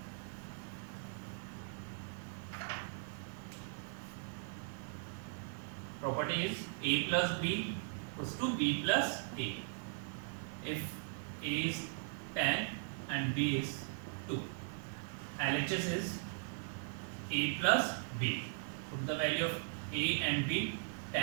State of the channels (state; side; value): silent; left; 52 dB below the other